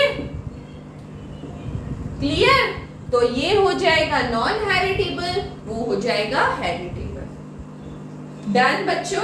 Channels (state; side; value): identical; both; correlation 1.00